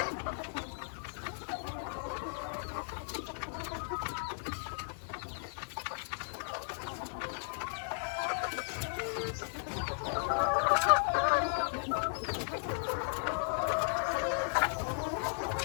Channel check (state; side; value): silent; right; digital silence